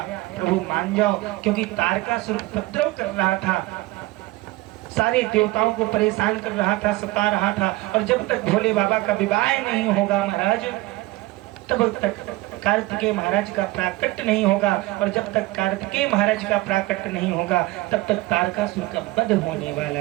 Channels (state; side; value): quieter; left; 20.1 dB